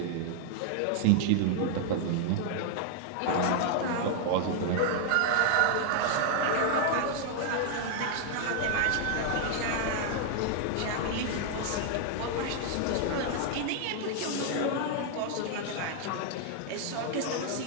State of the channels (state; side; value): different; both; correlation -0.01